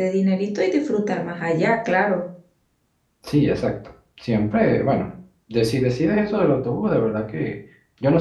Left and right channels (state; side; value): identical; both; correlation 1.00